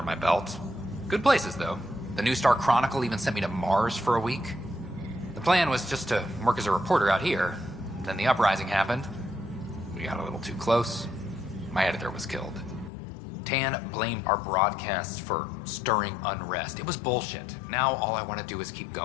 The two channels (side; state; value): right; drops out; at 12.9 s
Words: my belt. Good places, though. The New Star Chronicle even sent me to Mars for a week. The plan was just to work as a reporter out here. Then the uprising happened. We got a little too close. My editor was killed. Tan blamed our broadcasts for stirring unrest. It was bullshit. Now all I want to do is keep